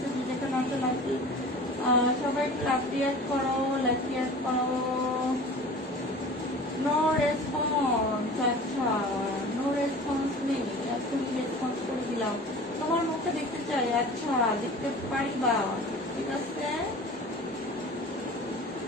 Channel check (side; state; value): both; normal; correlation 0.40